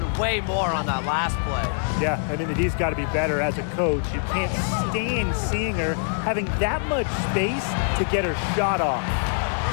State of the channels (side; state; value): right; silent; 56 dB below the other